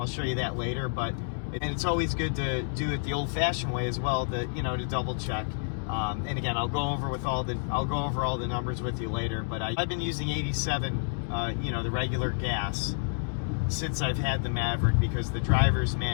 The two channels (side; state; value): right; silent; 58 dB below the other